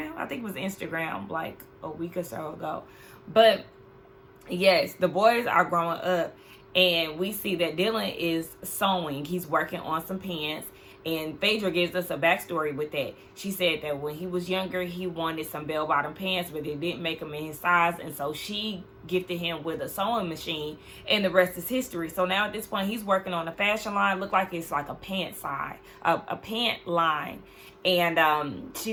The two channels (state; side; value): identical; both; correlation 1.00